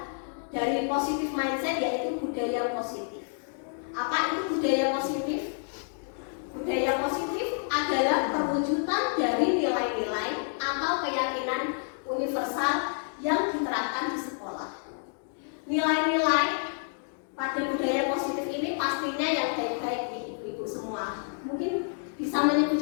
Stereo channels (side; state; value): right; silent; 59 dB below the other